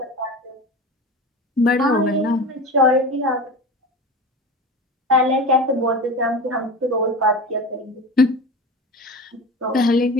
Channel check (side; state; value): both; normal; correlation 0.30